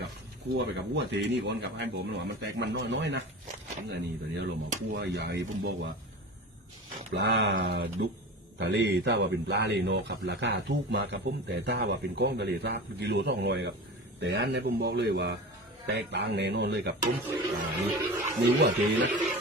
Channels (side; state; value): both; normal; correlation 0.32